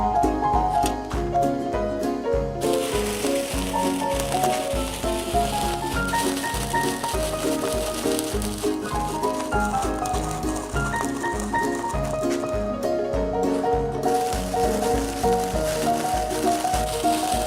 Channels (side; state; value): both; identical; correlation 1.00